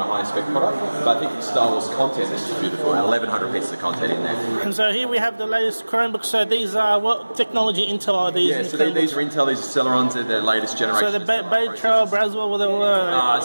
a high-spec product. But I think the Star Wars content is beautiful, and 1,100 pieces of content in there. And so here we have the latest Chromebooks. So these are what technology Intel are these? Yeah, so these are Intel. These are Celerons. They're their latest generation. So the Bay Trail, Braswell, whatever.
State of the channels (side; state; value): both; inverted; correlation -1.00